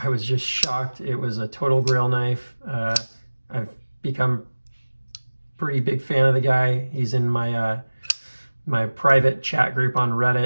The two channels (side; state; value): both; inverted; correlation -1.00